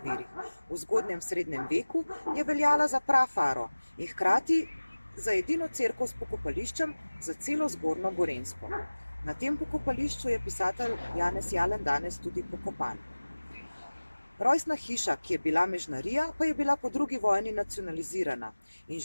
virih. V zgodnjem srednjem veku je veljala za prafaro in hkrati za edino cerkev s pokopališčem za celo Zgornjo Gorenjsko. Na tem pokopališču je pisatelj Janez Jalan danes tudi pokopan. Rojstna hiša, ki je bila mežnarija, pa je bila po drugi vojni nacionalizirana in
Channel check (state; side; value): inverted; both; correlation -1.00